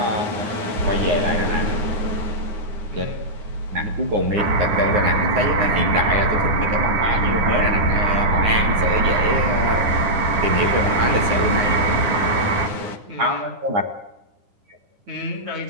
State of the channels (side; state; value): left; late; 9.7 ms